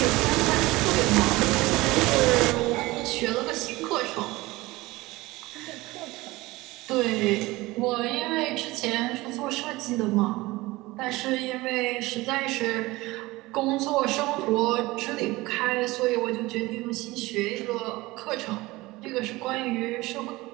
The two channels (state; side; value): quieter; left; 20.3 dB